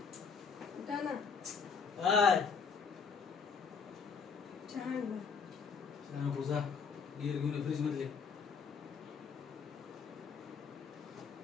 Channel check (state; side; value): quieter; right; 5.8 dB